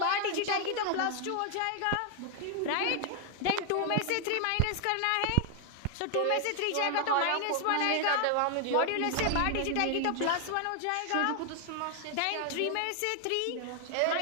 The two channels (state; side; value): different; both; correlation 0.00